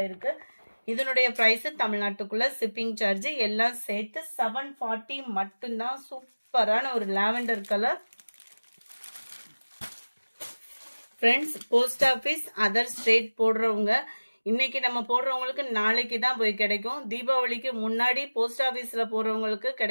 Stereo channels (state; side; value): inverted; both; correlation -1.00